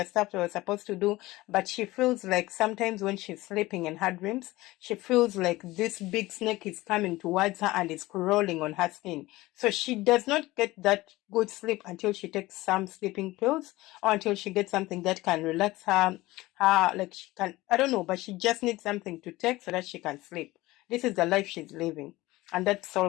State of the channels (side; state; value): right; quieter; 19.0 dB